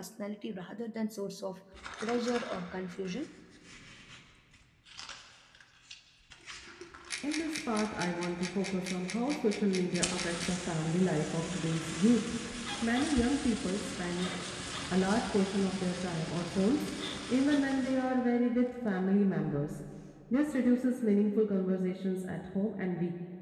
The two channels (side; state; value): both; identical; correlation 1.00